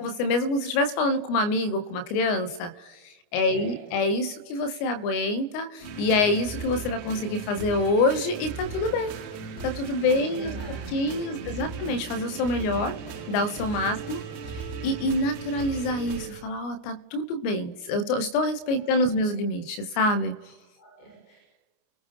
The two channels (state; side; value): late; right; 29 ms